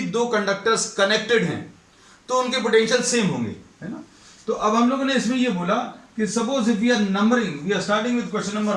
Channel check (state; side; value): identical; both; correlation 1.00